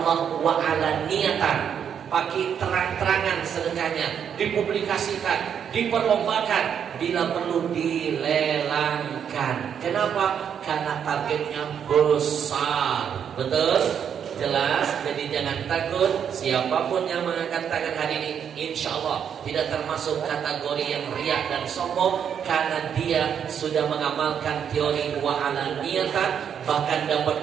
Allah, wa ala niyatan. Pakai terang-terangan sedekahnya, dipublikasikan, diperlombakan, bila perlu dilelangkan. Kenapa? Karena targetnya besar. Betul? Jelas? Jadi jangan takut. Siapapun yang mengangkat tangan hari ini, insya Allah tidak termasuk kategori yang riak dan sombong, karena dia sudah mengamalkan teori wa ala niyatan. Bahkan dapat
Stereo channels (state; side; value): quieter; left; 8.1 dB